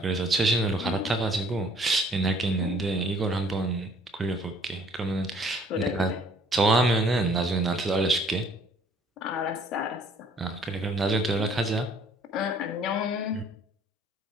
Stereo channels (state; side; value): normal; both; correlation 0.59